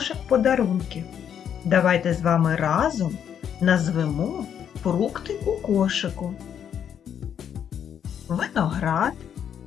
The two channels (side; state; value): right; quieter; 8.7 dB